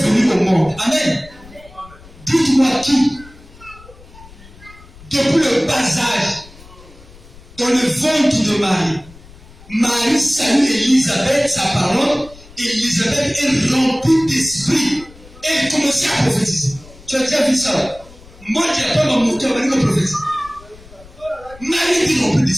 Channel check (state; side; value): noise; left; rumble, 22 dB below the sound